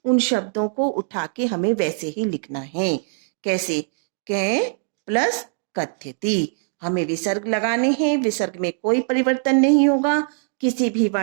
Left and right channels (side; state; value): left; silent; digital silence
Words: उन शब्दों को उठा के हमें वैसे ही लिखना है। कैसे? के प्लस कथ्यति, हमें विसर्ग लगाने हैं, विसर्ग में कोई परिवर्तन नहीं होगा, किसी भी